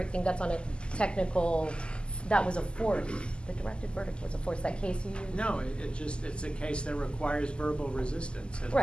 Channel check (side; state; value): right; late; 0.050 ms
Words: thing, that's on a technical, that was a force. The directed verdict was a force. That case you used? No, it's a case that requires verbal resistance. And